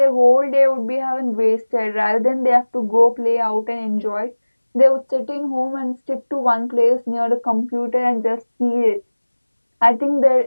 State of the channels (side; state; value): both; inverted; correlation -1.00